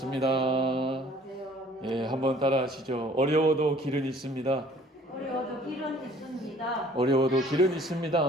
안녕하세요. 예, 한번 따라 하시죠. 어려워도 길은 있습니다. 어려워도 길은 있습니다. 어려워도 길은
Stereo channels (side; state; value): both; normal; correlation 0.54